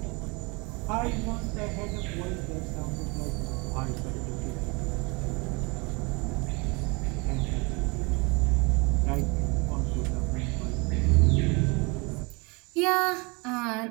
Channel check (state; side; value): quieter; left; 28.5 dB